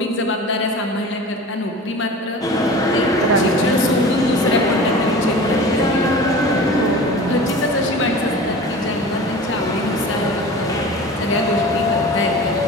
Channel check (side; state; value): both; normal; correlation 0.37